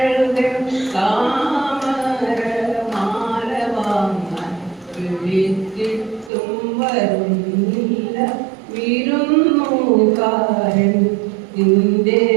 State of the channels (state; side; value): drops out; left; at 6.3 s